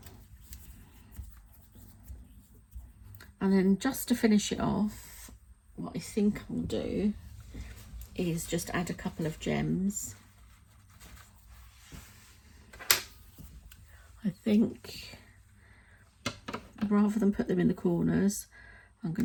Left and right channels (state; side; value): identical; both; correlation 1.00